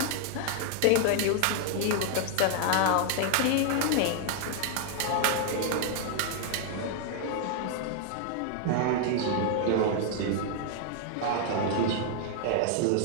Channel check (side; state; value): both; different; correlation 0.00